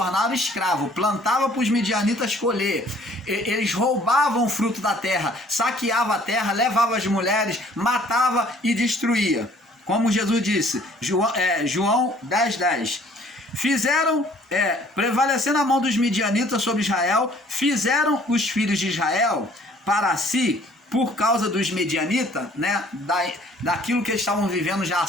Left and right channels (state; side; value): normal; both; correlation 0.57